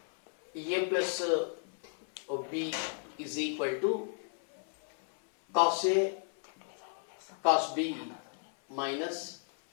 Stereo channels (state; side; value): silent; right; 55 dB below the other